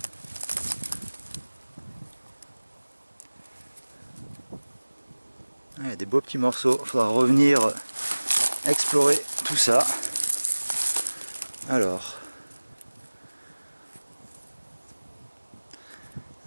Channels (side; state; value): both; inverted; correlation -1.00